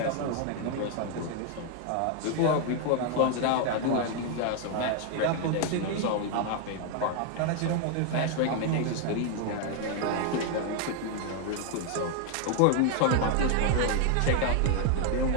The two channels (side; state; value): both; different; correlation 0.00